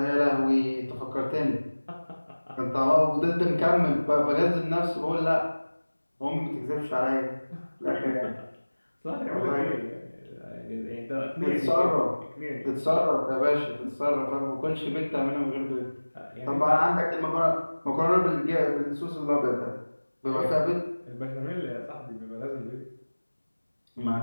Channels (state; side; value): inverted; both; correlation -1.00